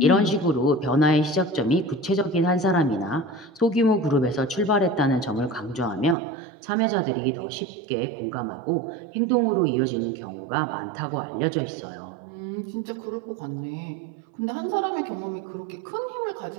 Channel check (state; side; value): drops out; left; at 6.2 s